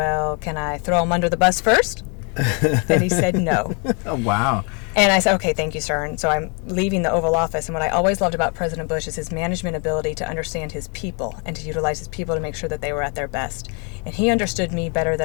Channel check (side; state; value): right; quieter; 35.3 dB